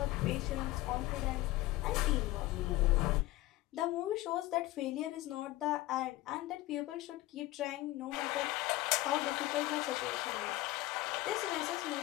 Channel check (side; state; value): right; quieter; 17.6 dB